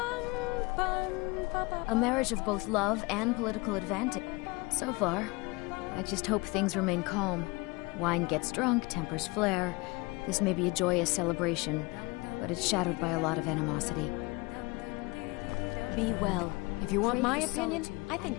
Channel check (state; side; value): quieter; right; 25.3 dB